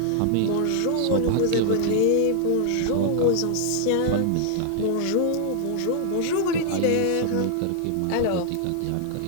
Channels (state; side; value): different; both; correlation 0.00